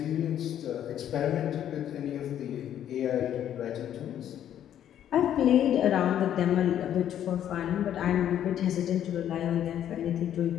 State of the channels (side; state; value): right; quieter; 10.5 dB